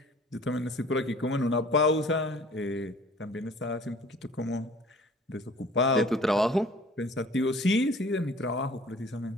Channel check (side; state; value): both; normal; correlation 0.50